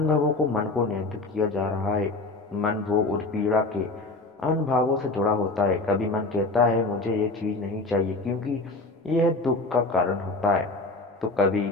को मन को नियंत्रित किया जा रहा है। मन भोग और पीड़ा के अनुभवों से जुड़ा होता है। कभी मन कहता है मुझे ये चीज नहीं चाहिए क्योंकि यह दुख का कारण होता है, तो कभी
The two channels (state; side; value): quieter; right; 3.1 dB